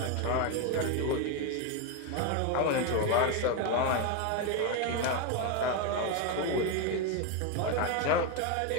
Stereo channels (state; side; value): different; both; correlation 0.02